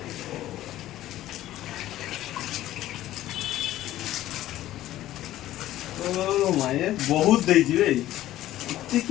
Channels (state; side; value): quieter; right; 14.3 dB